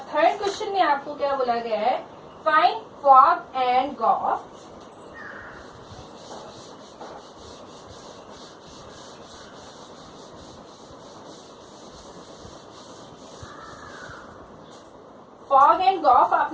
थर्ड क्वेश्चन में आपको क्या बोला गया है, find fog and gof. Fog and gof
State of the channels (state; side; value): identical; both; correlation 1.00